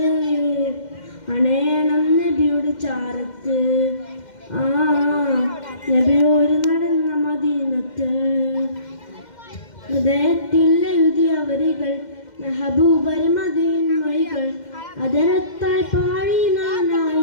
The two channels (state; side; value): late; right; 2.1 ms